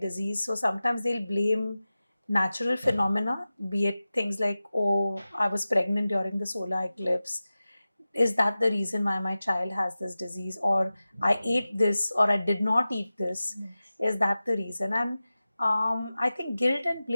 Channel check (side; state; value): both; inverted; correlation -0.95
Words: So sometimes they'll blame natural phenomena, be it things like, oh, I was pregnant during the solar eclipse. Is that the reason why my child has this disease? Or I ate this, or I did not eat this. Yes. Is that the reason? And I think guilt and